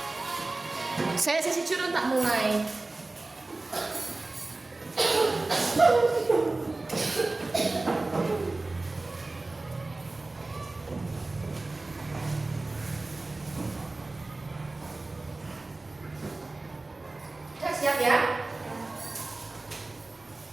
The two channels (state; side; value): quieter; left; 3.1 dB